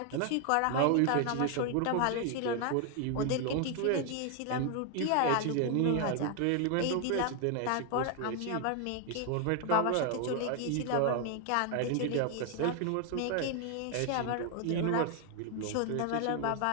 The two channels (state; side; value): different; both; correlation 0.00